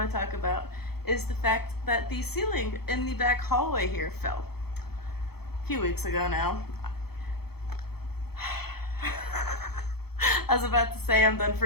to talk about is the fact that the ceiling in the back hallway here fell a few weeks ago now. I was about to say I'm done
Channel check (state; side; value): late; right; 0.96 ms